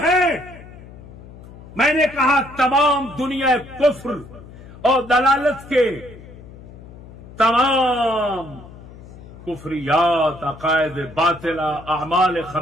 ہیں. میں نے کہا تمام دنیا کفر اور دلالت کے تمام کفریات، عقائد باطلہ، اعمال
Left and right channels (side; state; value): left; noise; hum, 18 dB below the sound